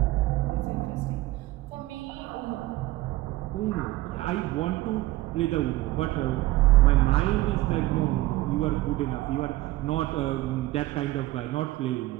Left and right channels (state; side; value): quieter; left; 17.7 dB